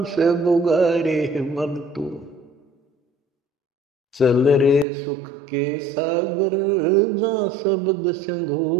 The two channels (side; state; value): left; drops out; at 4.9 s